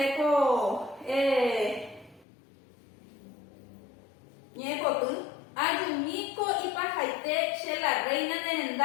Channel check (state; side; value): drops out; right; at 2.2 s